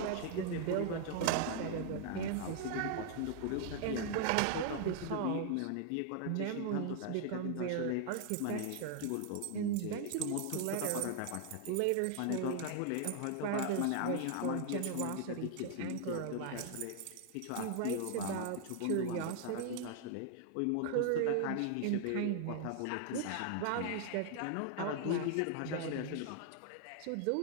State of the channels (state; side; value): different; both; correlation 0.00